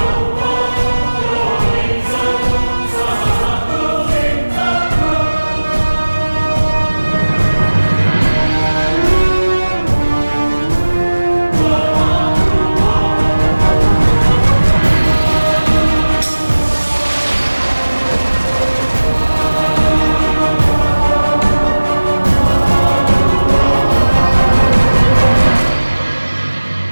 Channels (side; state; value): both; inverted; correlation -1.00